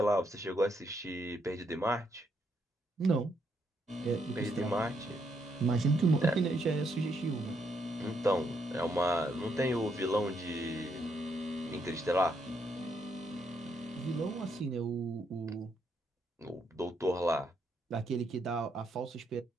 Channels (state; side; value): normal; both; correlation 0.76